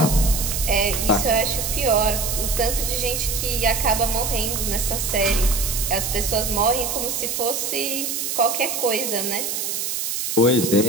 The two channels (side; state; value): right; noise; hiss, 2 dB below the sound